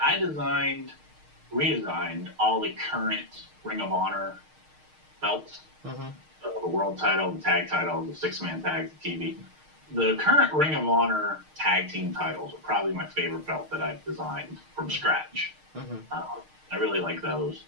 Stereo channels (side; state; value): left; late; 6.5 ms